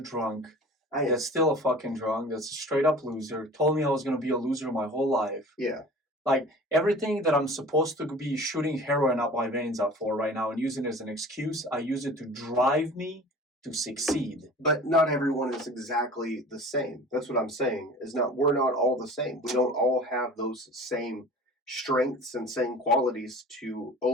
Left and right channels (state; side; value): normal; both; correlation 0.42